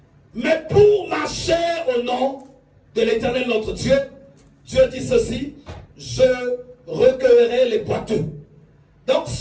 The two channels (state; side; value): identical; both; correlation 1.00